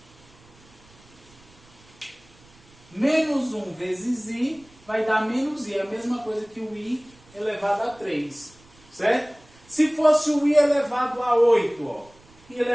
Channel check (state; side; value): noise; right; rumble, 27 dB below the sound